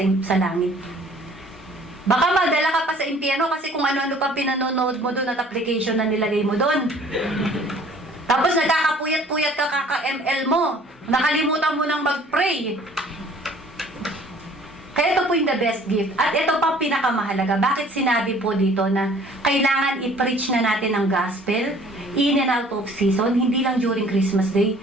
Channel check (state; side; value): normal; both; correlation 0.53